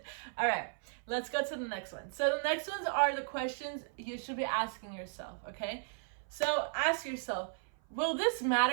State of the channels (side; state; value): left; silent; 54 dB below the other